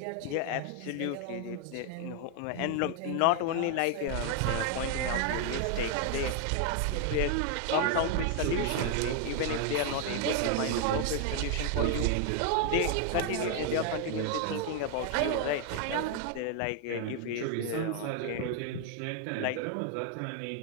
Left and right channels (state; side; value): different; both; correlation 0.00